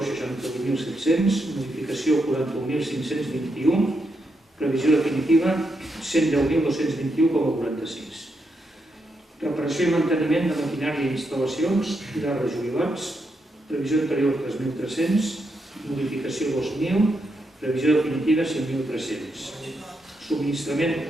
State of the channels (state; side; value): normal; both; correlation 0.82